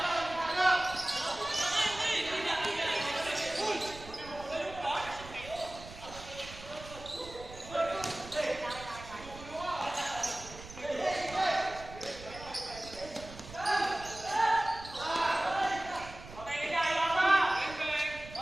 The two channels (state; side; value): noise; right; rumble, 15 dB below the sound